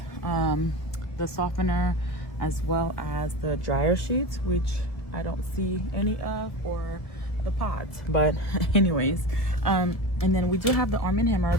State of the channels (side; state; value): right; late; 1.5 ms